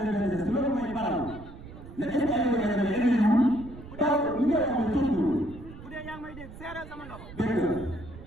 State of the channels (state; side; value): noise; right; rumble, 15 dB below the sound